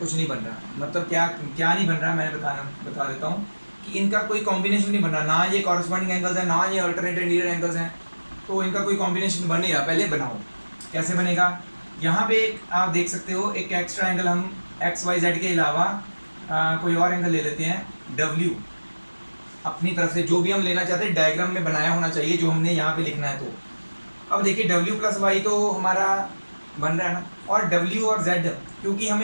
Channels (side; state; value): both; inverted; correlation -1.00